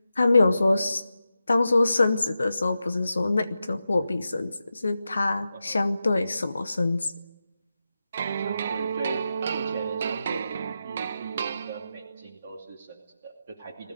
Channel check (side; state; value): both; inverted; correlation -0.90